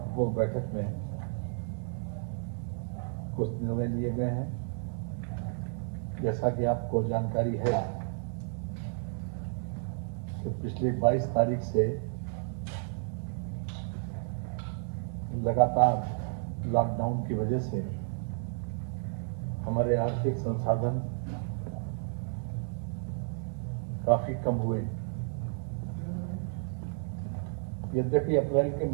बैठक में कुछ निर्णय लिए गए हैं। जैसा कि आपको जानकारी है कि पिछली 22 तारीख से लगातार लॉकडाउन की वजह से हमारे आर्थिक संसाधन काफी कम हुए। यद्यपि अप्रैल के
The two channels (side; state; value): left; silent; 56 dB below the other